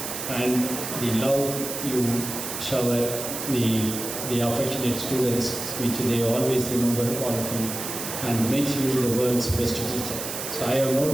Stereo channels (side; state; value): right; noise; hiss, 6 dB below the sound